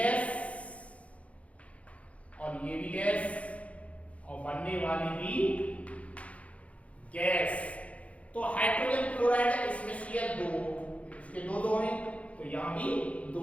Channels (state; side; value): late; right; 0.065 ms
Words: और ये भी गैस, और बनने वाली भी गैस। तो हाइड्रोजन क्लोराइड इसमें Cl 2, इसके 2 हैं, तो यहां भी 2